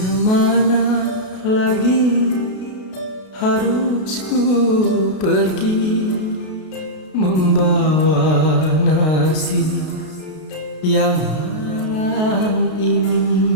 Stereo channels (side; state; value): right; late; 32 ms